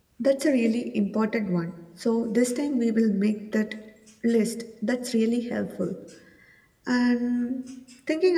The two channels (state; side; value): identical; both; correlation 1.00